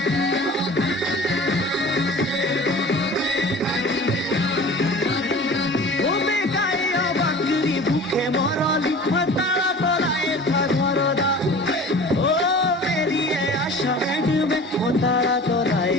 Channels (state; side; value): normal; both; correlation 0.41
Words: ওবে গায়ে বাকরি ভুখে মরলি তারা তোলায় ঘরদা ও বেরিয়ে আসা বেটবে তারা তোলায়